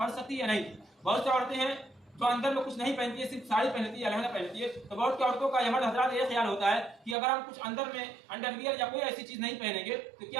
سکتی ہے یا نہیں؟ بہت سی عورتیں ہیں جو اندر میں کچھ نہیں پہنتی ہے، صرف ساڑی پہنتی ہے یا لہنگا پہنتی ہے، تو بہت سی عورتوں کا مرد حضرات یہ خیال ہوتا ہے کہ اگر ہم کچھ اندر میں انڈر ویئر یا کوئی ایسی چیز نہیں پہنیں گے تو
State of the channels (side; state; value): left; drops out; at 7.2 s